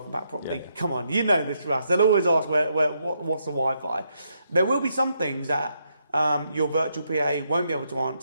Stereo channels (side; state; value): both; inverted; correlation -0.78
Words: pack properly. Yeah. Come on, you know this, Russ. They'll always ask what's the Wi-Fi. There will be some things that your virtual PA won't be able to